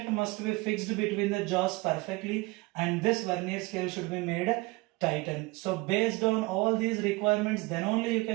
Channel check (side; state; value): left; quieter; 24.1 dB